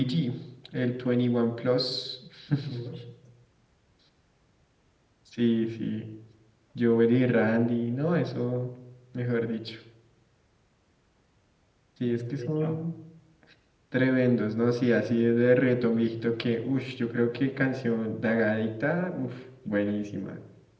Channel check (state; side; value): identical; both; correlation 1.00